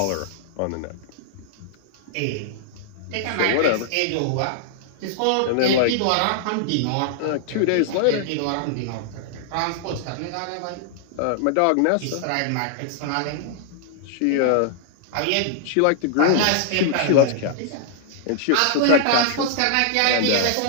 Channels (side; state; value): both; different; correlation -0.01